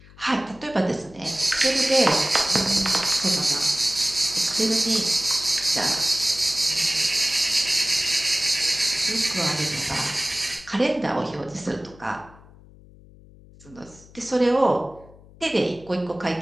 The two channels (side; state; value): left; noise; hum, 23 dB below the sound